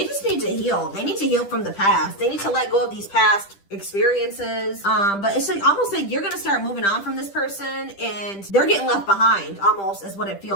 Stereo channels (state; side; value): late; right; 10 ms